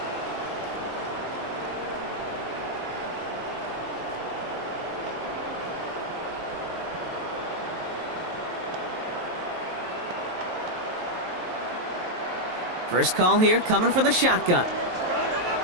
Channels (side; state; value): left; late; 23 ms